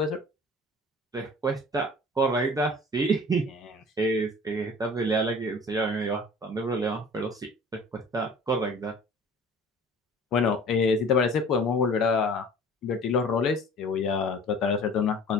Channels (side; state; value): both; normal; correlation 0.45